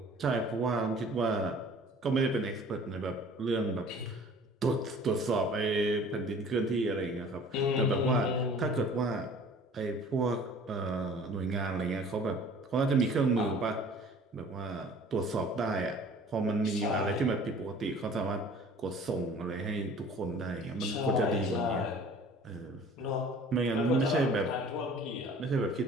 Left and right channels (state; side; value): normal; both; correlation 0.48